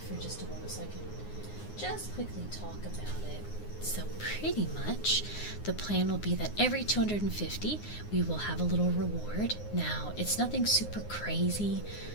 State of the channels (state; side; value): late; right; 9.6 ms